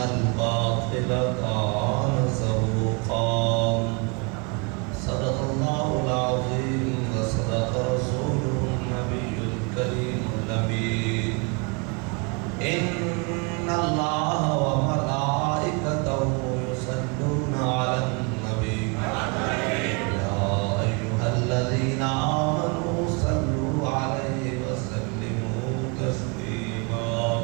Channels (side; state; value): left; quieter; 31.7 dB